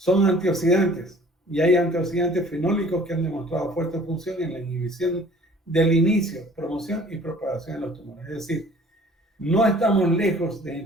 antioxidantes y hay antioxidantes fenólicos que han demostrado fuerte función en la inhibición del inicio, promoción y propagación de los tumores. Es decir, no estamos lejos de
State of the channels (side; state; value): both; normal; correlation 0.51